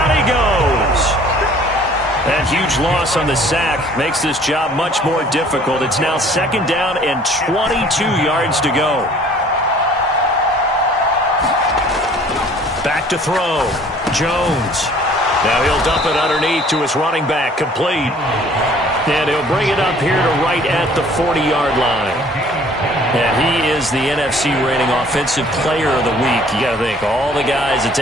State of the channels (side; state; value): both; normal; correlation 0.54